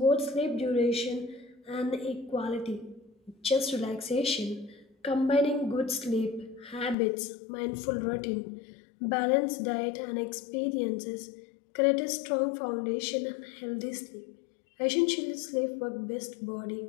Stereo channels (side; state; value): right; drops out; at 7.0 s